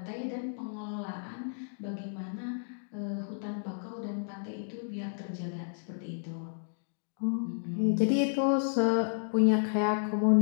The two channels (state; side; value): silent; right; digital silence